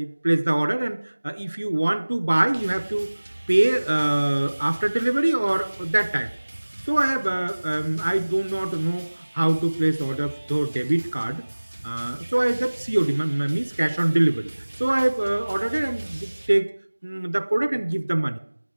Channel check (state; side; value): inverted; both; correlation -1.00